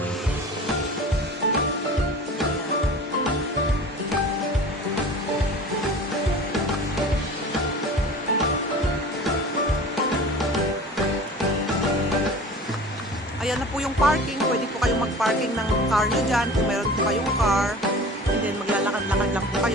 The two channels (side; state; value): both; normal; correlation 0.40